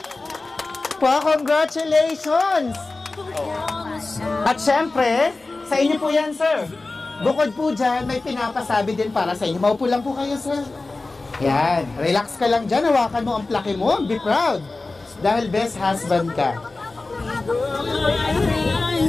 Congratulations! At syempre, sa inyo po yan, sir. Bukod po dyan, may pinapasabi din para sa inyo. Maupo lang po kayo, sir. Yan. Relax ka lang dyan. Hawakan mo ang plaque mo. Be proud. Dahil best husband ka.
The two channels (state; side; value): quieter; right; 3.4 dB